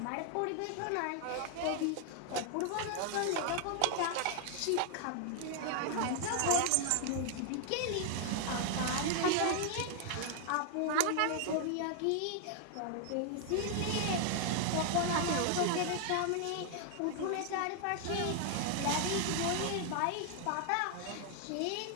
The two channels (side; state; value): both; different; correlation 0.00